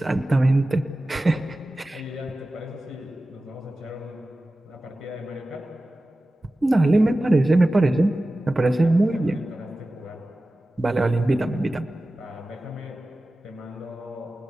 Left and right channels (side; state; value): both; normal; correlation 0.95